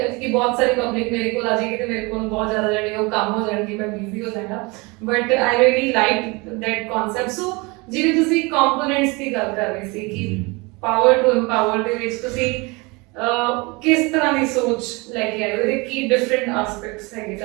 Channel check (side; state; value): left; quieter; 26.6 dB